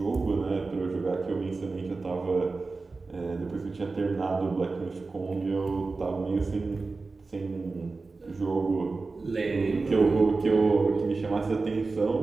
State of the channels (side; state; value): left; quieter; 3.9 dB